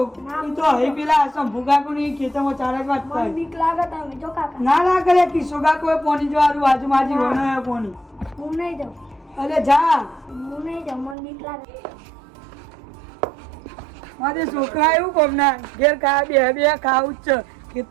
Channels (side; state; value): left; drops out; at 11.2 s